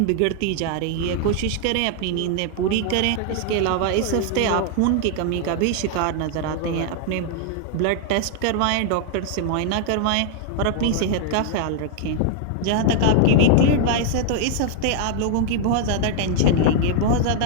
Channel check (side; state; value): both; different; correlation 0.00